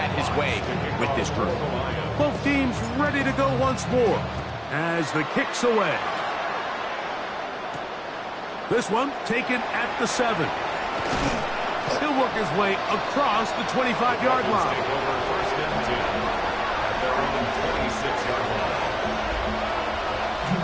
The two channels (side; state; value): both; identical; correlation 1.00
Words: his way with this group. Both teams ready to go once more as the kick's away. This one taken at the 7. He'll work his way across the 25-yard line.